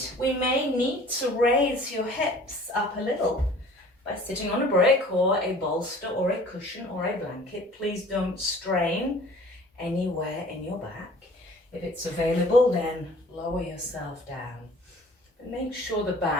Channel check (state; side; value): normal; both; correlation 0.49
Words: we may need to raise your hips up a little by sitting on a brick or a bolster or a cushion or a blanket. Please don't strain anywhere in your back. If it's available, then lower yourself down. But make sure the